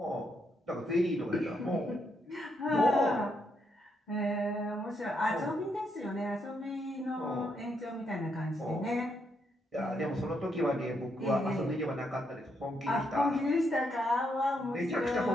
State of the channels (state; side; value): normal; both; correlation 0.78